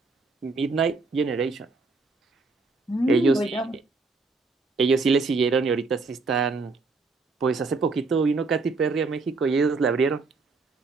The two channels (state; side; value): quieter; left; 3.9 dB